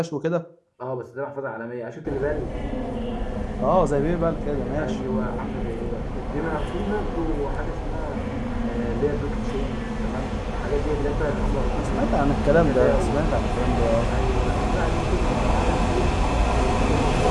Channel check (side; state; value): both; identical; correlation 1.00